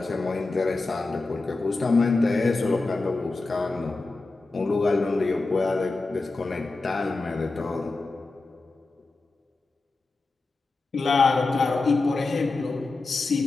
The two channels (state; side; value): quieter; right; 3.5 dB